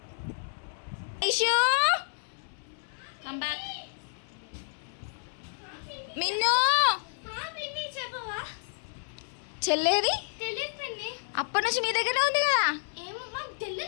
మిన్ను చెల్లేది అప్పటి నుంచి మీ దగ్గరనే ఉంది కదా.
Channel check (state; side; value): silent; right; 58 dB below the other